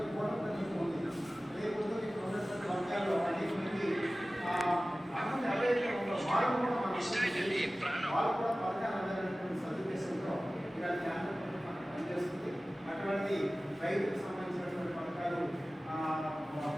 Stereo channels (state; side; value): normal; both; correlation 0.97